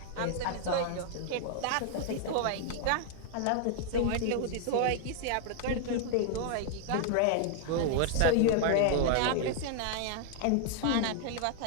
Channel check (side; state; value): both; different; correlation 0.00